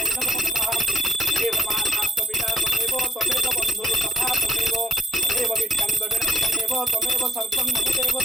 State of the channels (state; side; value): normal; both; correlation 0.72